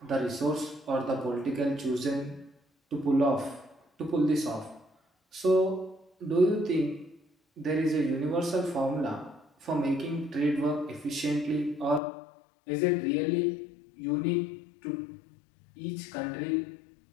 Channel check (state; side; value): drops out; right; at 12.0 s